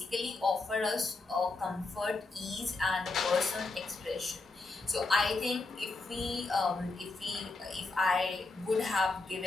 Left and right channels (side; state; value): right; quieter; 3.5 dB